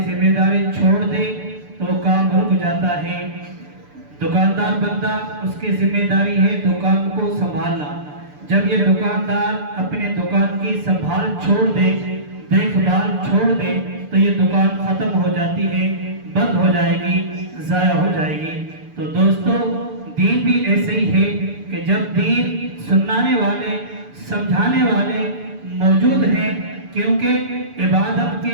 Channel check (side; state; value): left; late; 6.8 ms